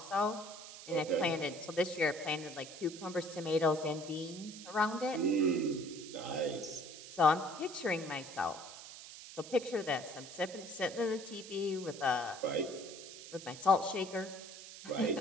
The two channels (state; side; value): noise; right; hiss, 14 dB below the sound